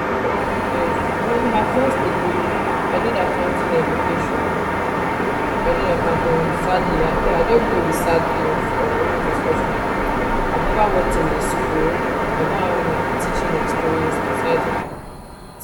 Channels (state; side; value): identical; both; correlation 1.00